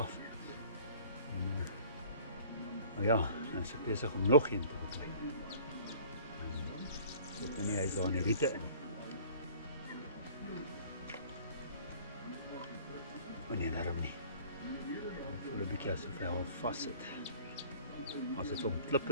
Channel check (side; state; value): both; inverted; correlation -0.49